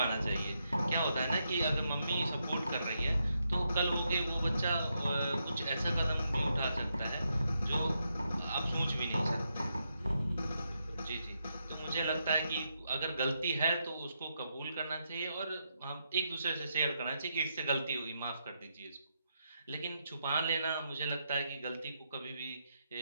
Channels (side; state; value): both; inverted; correlation -0.81